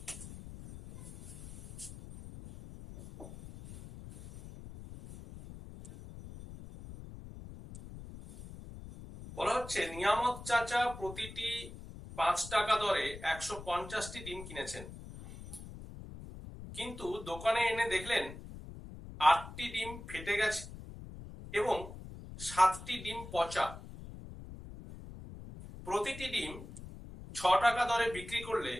বলা হচ্ছে নিয়ামত চাচা প্রতিটি 5 টাকা দরে 150টি ডিম কিনেছেন, কিন্তু দোকানে এনে দেখলেন 8টি ডিম ফেটে গেছে এবং 7টি ডিম পচা। প্রতিটি ডিম 6 টাকা দরে বিক্রি করলে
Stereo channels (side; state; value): left; noise; rumble, 13 dB below the sound